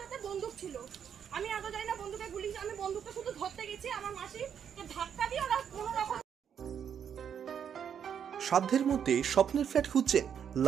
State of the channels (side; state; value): left; quieter; 8.2 dB